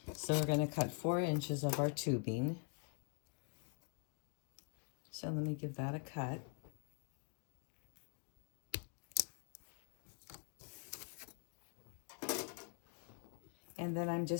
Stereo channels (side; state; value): right; quieter; 39.8 dB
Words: So we're going to cut 4 inches of our tubing. So let me give that a cut. And then I'm